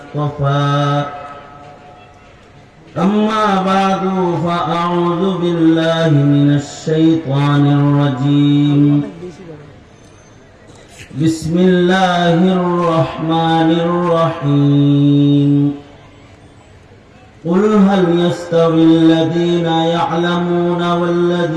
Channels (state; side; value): identical; both; correlation 1.00